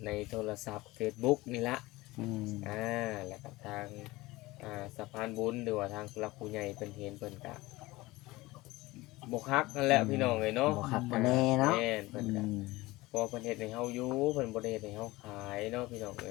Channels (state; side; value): quieter; right; 20.2 dB